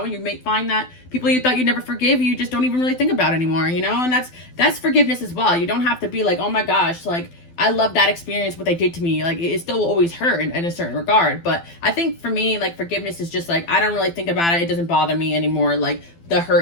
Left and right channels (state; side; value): late; right; 12 ms